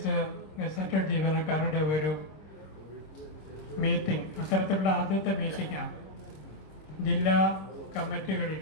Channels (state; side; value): late; right; 26 ms